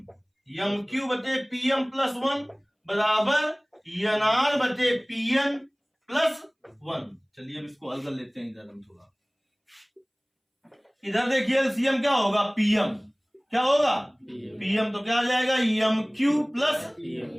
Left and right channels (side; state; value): both; identical; correlation 1.00